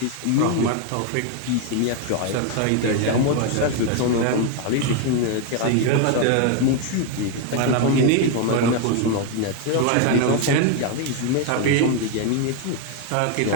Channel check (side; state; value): both; different; correlation 0.01